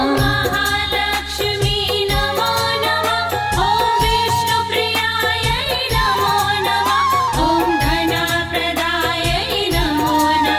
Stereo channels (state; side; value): identical; both; correlation 1.00